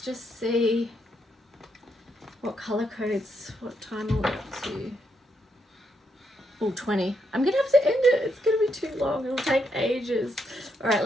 just see what color codes, what time are we up to? Oh, 20. I'm going to have to end it. It's going to be too long. It'll take ages. All right,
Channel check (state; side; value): normal; both; correlation 0.78